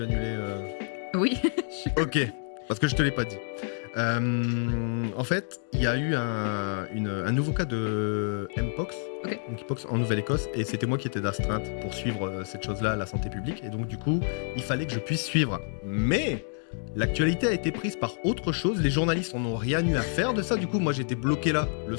annuler Oui. Ok, parce que je te l'ai pas dit. En fait, il y a eu un nouveau cas de Mpox, Ok. donc Mpox en Nouvelle-Écosse, et c'était moi qui étais d'astreinte pour suivre cette chose-là, la santé publique, et donc du coup, il fallait que je puisse suivre. Mais l'actualité a été prise par autre chose, les journalistes en ont rien eu à faire de ça, du coup, moi j'étais bloqué là le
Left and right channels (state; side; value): silent; right; 59 dB below the other